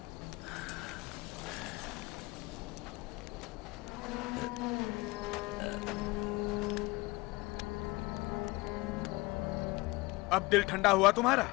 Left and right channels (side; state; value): right; quieter; 22.7 dB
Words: अब दिल ठंडा हुआ तुम्हारा?